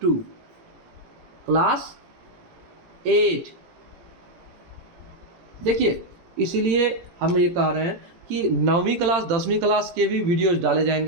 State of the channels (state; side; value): late; left; 17 ms